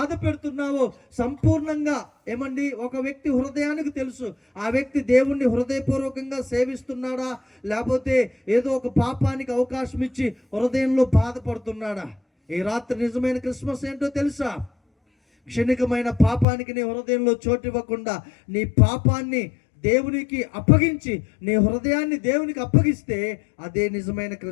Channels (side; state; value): right; drops out; at 16.4 s